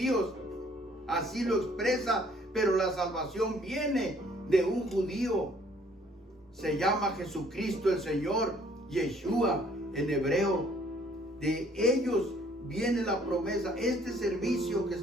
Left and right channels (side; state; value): both; normal; correlation 0.61